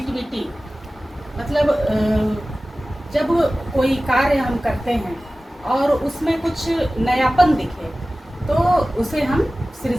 मतलब जब कोई कार्य हम करते हैं और उसमें कुछ नयापन दिखे तो उसे हम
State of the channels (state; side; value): normal; both; correlation 0.97